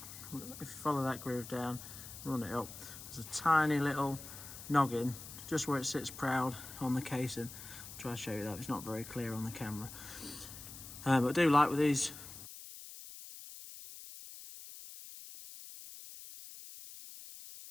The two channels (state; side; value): noise; left; hiss, 13 dB below the sound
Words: if you follow that groove down, run it up, there's a tiny little noggin just where it sits proud on the casing. I'll try to show you that, it's not very clear on the camera. But I do like with these